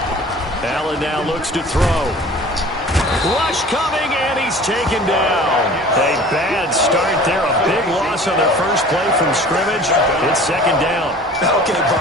Allen now looks to throw. Rush coming, and he's taken down. A bad start there. A big loss on their first play from scrimmage. It's 2nd down. Okay,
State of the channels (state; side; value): normal; both; correlation 0.45